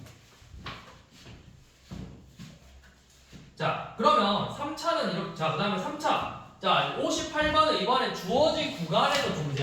자, 그러면 3차는 이렇게. 자, 그 다음에 3차. 자, 58번은 이번에 주어진 구간에서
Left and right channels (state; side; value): identical; both; correlation 1.00